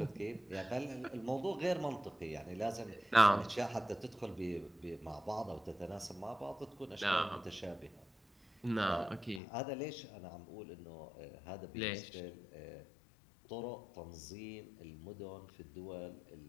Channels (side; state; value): right; drops out; at 9.4 s